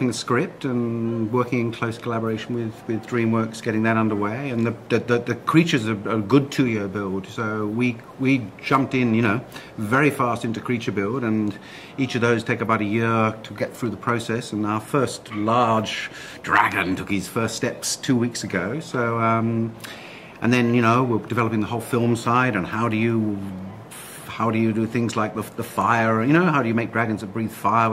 the script and working in close collaboration with DreamWorks, getting that underway. And the creatures are a good 2-year build. So we jumped in, very fast into creature build, and each of those take about a year to get through the process. And our first large dragon took his first steps 2 weeks ago. So, and then, we're developing the whole film side, and how do you do things like the fire, how do you make dragons that breathe fire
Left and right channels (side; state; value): both; identical; correlation 1.00